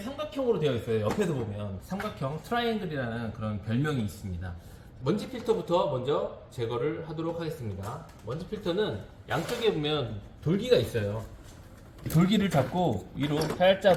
되어 있어요. 옆에서 보면 삼각형 트라이앵글이라는 그런 별명이 있습니다. 먼지 필터부터 먼저 제거를 하도록 하겠습니다. 먼지 필터는 양쪽에 보면 돌기가 있어요. 돌기를 잡고 위로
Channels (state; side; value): identical; both; correlation 1.00